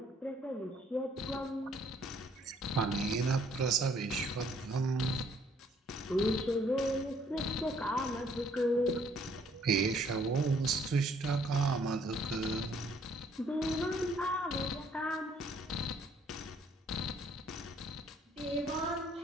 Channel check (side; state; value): both; normal; correlation 0.63